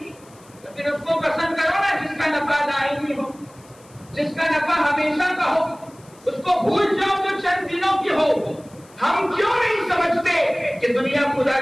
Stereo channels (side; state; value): left; noise; hiss, 27 dB below the sound